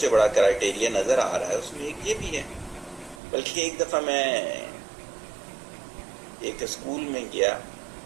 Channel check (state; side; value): drops out; left; at 3.2 s